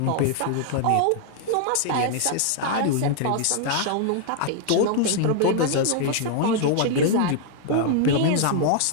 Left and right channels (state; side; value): different; both; correlation 0.00